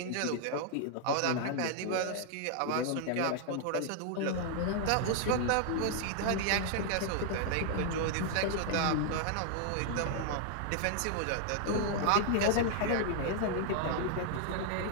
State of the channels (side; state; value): both; different; correlation 0.00